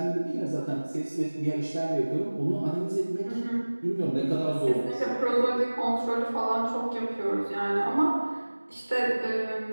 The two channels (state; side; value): inverted; both; correlation -1.00